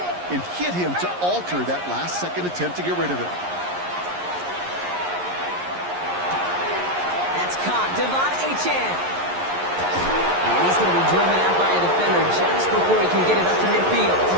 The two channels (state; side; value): late; left; 11 ms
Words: and hit him to alter that last-second attempt to get rid of it. That's caught. Devon Achane. And he's going to be driven out by a defender just before he can get it up to midfield.